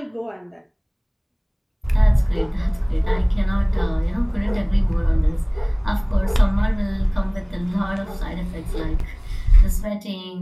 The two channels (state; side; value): identical; both; correlation 1.00